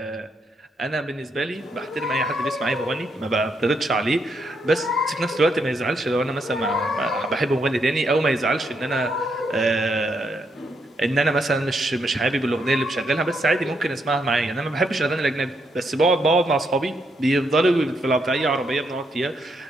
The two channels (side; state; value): both; normal; correlation 0.77